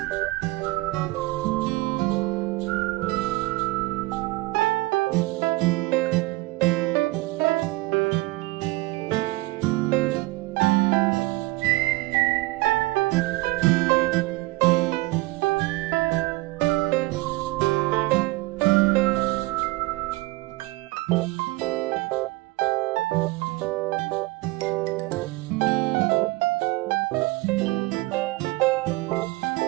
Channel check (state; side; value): quieter; left; 21.6 dB